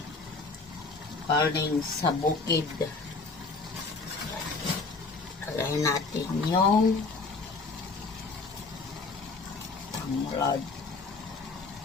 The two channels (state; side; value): quieter; right; 4.0 dB